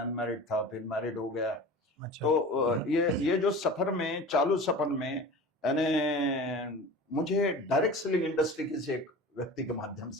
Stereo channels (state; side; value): normal; both; correlation 0.37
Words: अनमैरिड था, फिर मैरिड हो गया। अच्छा, तो ये जो सफर में, चालू सफर में, यानी मुझे डायरेक्ट सेलिंग इंडस्ट्री किसी एक व्यक्ति के माध्यम